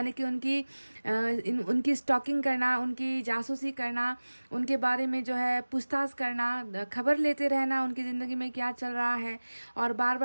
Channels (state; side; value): inverted; both; correlation -1.00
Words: कि उनकी स्टॉकिंग करना, उनकी जासूसी करना, उनके बारे में जो है पूछताछ करना, खबर लेते रहना उनकी ज़िंदगी में क्या चल रहा है, और बार